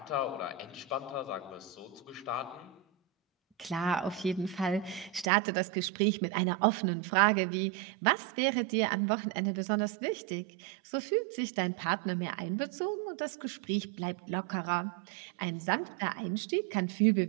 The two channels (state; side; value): drops out; left; at 5.2 s